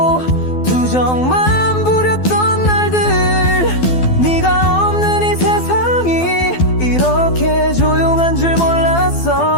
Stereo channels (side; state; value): right; late; 12 ms